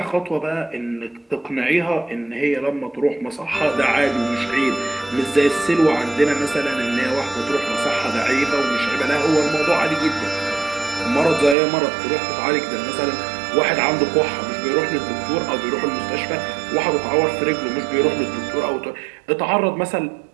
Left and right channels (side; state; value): left; drops out; at 11.6 s